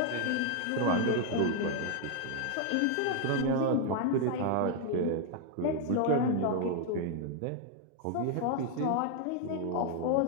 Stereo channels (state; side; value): different; both; correlation 0.00